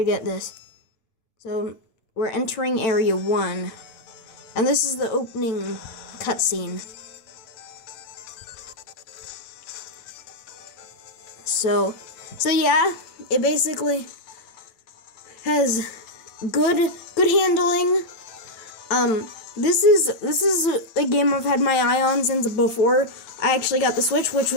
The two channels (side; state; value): right; late; 9.0 ms